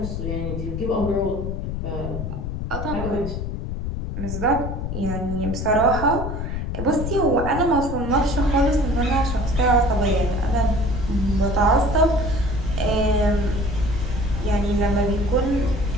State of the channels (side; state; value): left; noise; rumble, 4 dB below the sound